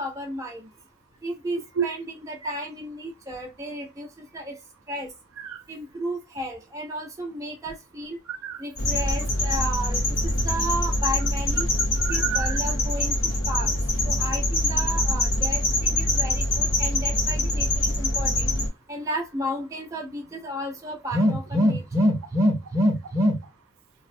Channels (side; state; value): both; normal; correlation 0.55